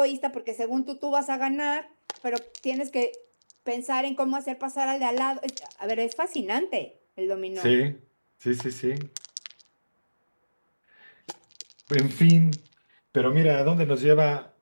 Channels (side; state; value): both; inverted; correlation -1.00